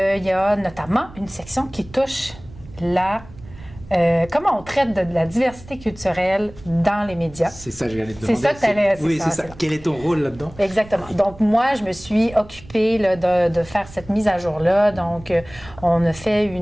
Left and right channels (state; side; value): noise; right; rumble, 19 dB below the sound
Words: y a notamment une section qui touche comment on traite de la diversité culturelle dans les médias. C'est ça que j'allais te demander. C'est ça que tu allais... Oui, c'est ça. Quel est ton rôle là-dedans? Exactement. Donc, moi, je me suis occupée là, de faire cette mise à jour-là. Donc, on a fait